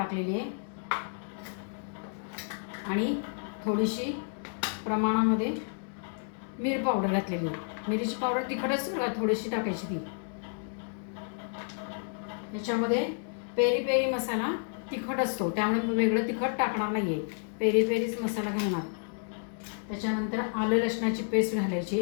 आहे आणि थोडीशी प्रमाणामध्ये मिरची पावडर घातलेली आहे। मिरची पावडर तिखटच थोडीशी टाकायची ती। याच्यामध्ये पेरी पेरी मसाला तिखट असतो, त्यामुळे मी वेगळं तिखट टाकणार नाहीये, पेरी पेरीच मसाला घालणार। त्याच्यानंतर आलं लसणाची पेस्ट घालायची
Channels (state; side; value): silent; right; 55 dB below the other